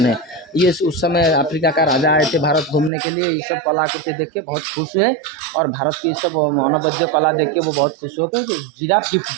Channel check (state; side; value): drops out; left; at 2.9 s